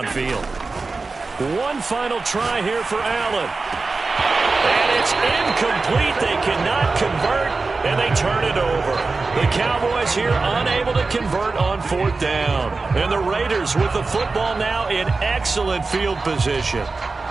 One final try here for Allen. And it's incomplete. They cannot convert, and they turn it over. The Cowboys here unable to convert on 4th down. And the Raiders with the football now in excellent field position.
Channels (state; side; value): quieter; left; 3.9 dB